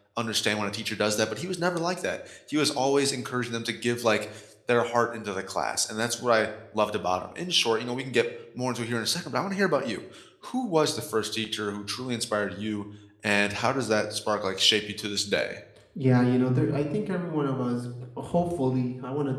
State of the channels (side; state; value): both; identical; correlation 1.00